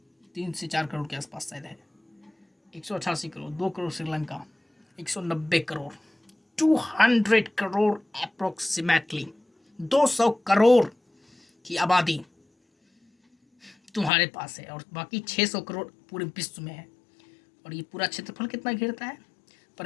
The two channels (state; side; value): drops out; right; at 14.1 s